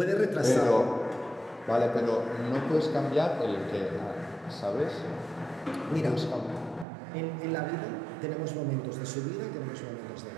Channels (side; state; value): left; drops out; at 6.9 s